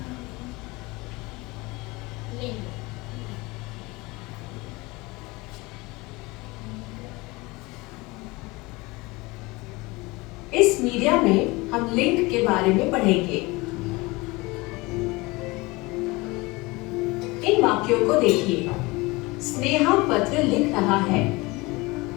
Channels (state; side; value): quieter; right; 23.3 dB